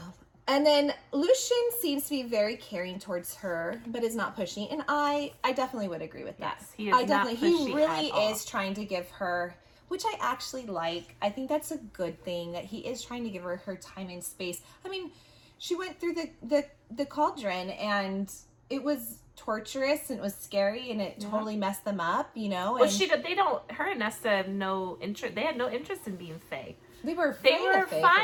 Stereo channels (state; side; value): identical; both; correlation 1.00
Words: And then Lucien seems to be very caring towards her, but is not pushy. And I definitely would agree with that. Yes, he is not pushy He really at all. is trying to give her, which I actually like. I think that's a good thing, that he is trying to give her time and space. I mean, she went through the cauldron, and it was torturous, and it was scary, and it totally messed them up, you know? Well, her and Nesta have no interest. They had no interest in being Fae. They were